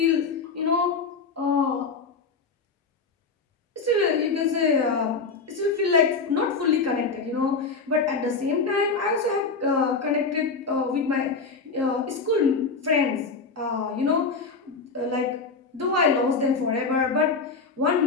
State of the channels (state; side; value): quieter; right; 4.5 dB